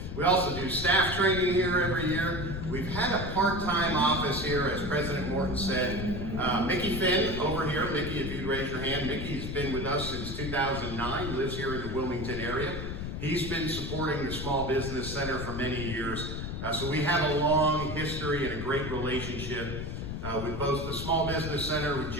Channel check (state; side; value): noise; left; rumble, 5 dB below the sound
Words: We also do staff training here every year. We've had a part-time office here, as President Morton said. Mickey Finn over here. Mickey, if you'd raise your hand. Mickey's been with us since 2009, lives here in the Wilmington area. He's been supporting the Small Business Center for many years. So we have a long history and a great relationship with both the Small Business Center, with